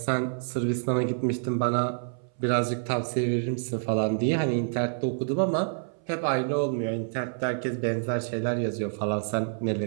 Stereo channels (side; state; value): left; silent; 60 dB below the other